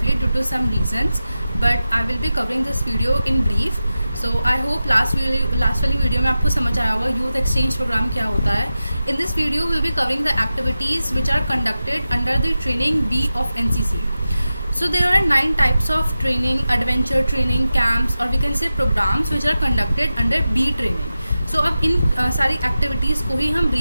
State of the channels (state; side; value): inverted; both; correlation -0.93